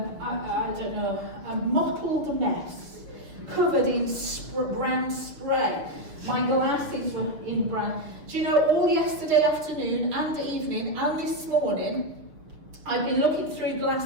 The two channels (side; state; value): left; late; 6.3 ms